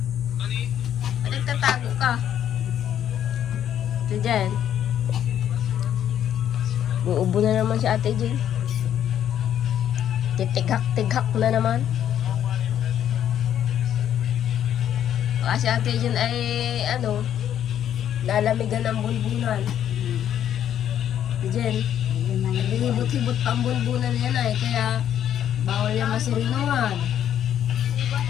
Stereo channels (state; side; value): quieter; right; 10.2 dB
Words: Ba't nagtatago ka? Ate Jen. Uubo na naman si Ate Jen. Titigak-tigak na naman. Baka si Ate Jen ay ano, lalamigan ng bunbunan. Ate Jen, naglilibot-hibot pa ang bunbunan yan ay, kaya bawal yan masirinuhan.